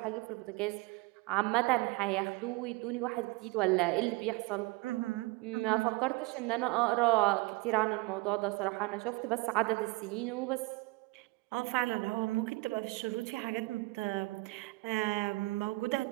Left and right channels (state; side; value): quieter; left; 24.2 dB